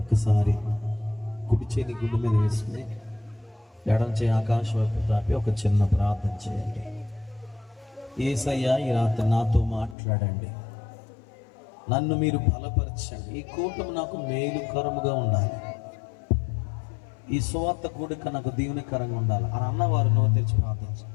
కుడి చేతి గుండె మీద వేసుకుని ఎడం చేయి ఆకాశం వైపు తాపి ఒక చిన్న ప్రార్థన చేయండి. యేసయ్యా, ఈ రాత్రి నాతో మాట్లాడండి. నన్ను మీరు బలపరచండి. ఈ కూటమి నాకు మేలుకరముగా ఉండాలి. ఈ సువార్త కూడిక నాకు దీవెనకరంగా ఉండాలి అని అన్నవారు నోరు తెరిచి ప్రార్థించండి.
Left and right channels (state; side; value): drops out; right; at 10.0 s